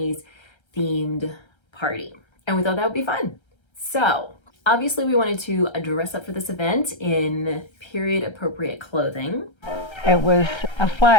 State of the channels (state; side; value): late; right; 1.3 ms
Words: themed party. And we thought that would be fun. So obviously we wanted to dress up for this event in period appropriate clothing. It was a